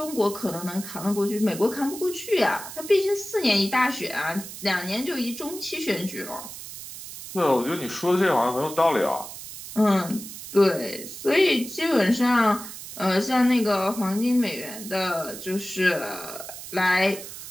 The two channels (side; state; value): right; noise; hiss, 12 dB below the sound